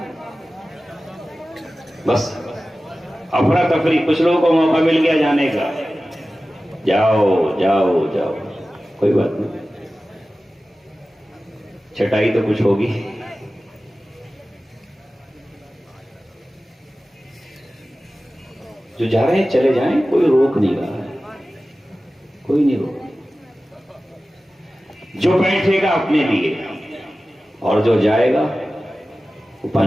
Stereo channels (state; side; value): normal; both; correlation 0.96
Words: بس افراتفری، کچھ لوگوں کو موقع مل گیا جانے کا، جاؤ جاؤ جاؤ، کوئی بات نہیں، چھٹائی تو کچھ ہوگی۔ جو جا رہے ہیں چلے جائیں، کوئی روک نہیں رہا ہے، کوئی نہیں روک۔ جو بیٹھے گا اپنے لیے اور جو جائے گا وہ